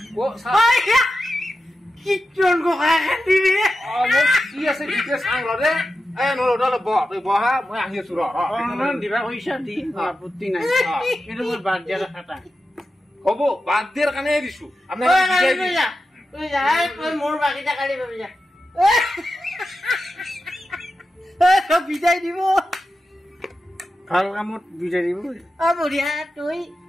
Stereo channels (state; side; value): normal; both; correlation 0.91